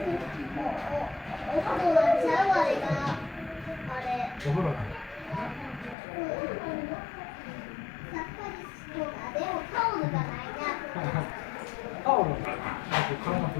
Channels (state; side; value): drops out; right; at 6.0 s